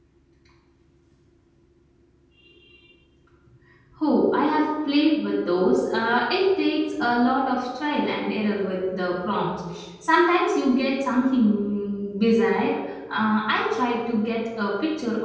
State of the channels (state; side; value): identical; both; correlation 1.00